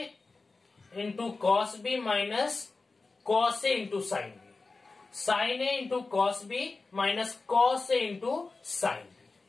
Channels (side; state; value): right; quieter; 3.8 dB